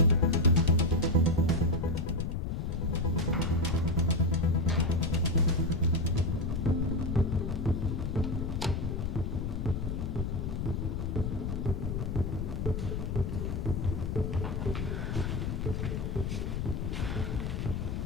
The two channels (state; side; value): noise; left; rumble, 1 dB below the sound